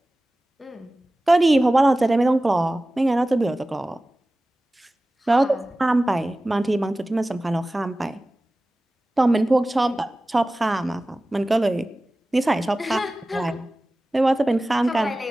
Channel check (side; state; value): both; normal; correlation 0.97